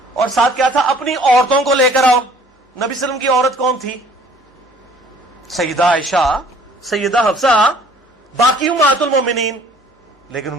اور ساتھ کیا تھا؟ اپنی عورتوں کو لے کر آؤ. نبی صلی اللہ علیہ وسلم کی عورت کون تھی؟ سیدہ عائشہ، سیدہ حفصہ، باقی امہات المومنین. لیکن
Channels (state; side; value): normal; both; correlation 0.55